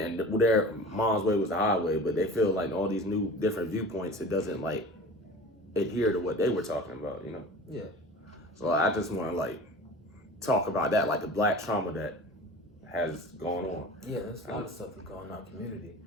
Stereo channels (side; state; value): both; normal; correlation 0.39